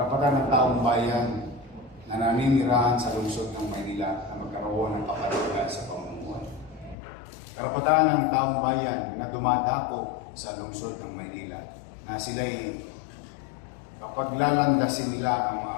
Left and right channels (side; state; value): right; drops out; at 7.0 s